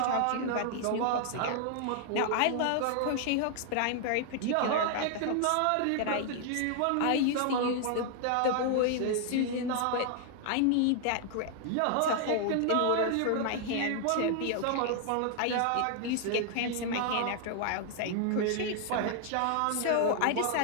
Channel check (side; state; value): both; different; correlation 0.00